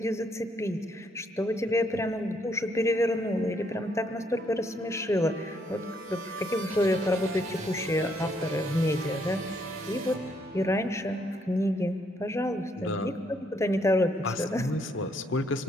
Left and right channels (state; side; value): normal; both; correlation 0.71